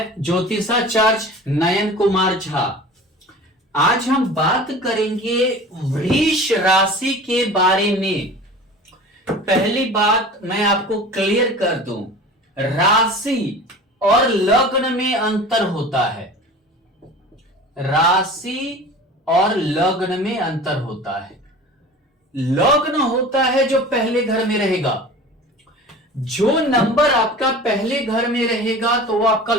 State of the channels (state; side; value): normal; both; correlation 0.39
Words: ज्योतिषाचार्य नयन कुमार झा। आज हम बात करेंगे वृष राशि के बारे में। पहली बात मैं आपको क्लियर कर दूं, राशि और लग्न में अंतर होता है। राशि और लग्न में अंतर होता है। लग्न होता है जो पहले घर में रहेगा। जो नंबर आपका पहले घर में रहेगा तो वो आपका